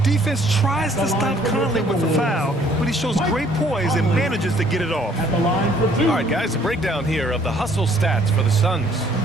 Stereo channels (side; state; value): both; normal; correlation 0.61